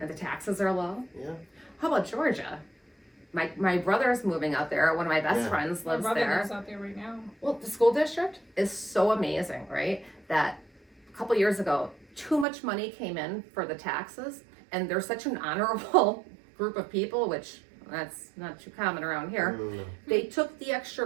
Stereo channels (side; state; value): left; drops out; at 12.5 s